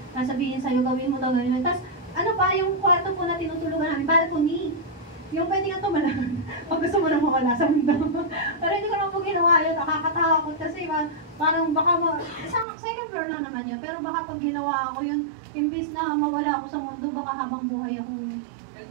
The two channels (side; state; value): left; drops out; at 12.7 s